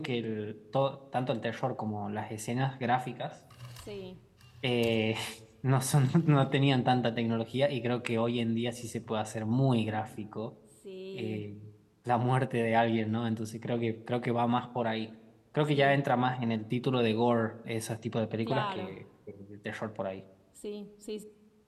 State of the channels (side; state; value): both; identical; correlation 1.00